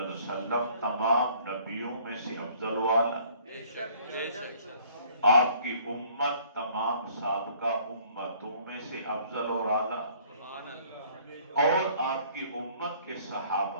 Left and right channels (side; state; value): both; inverted; correlation -0.57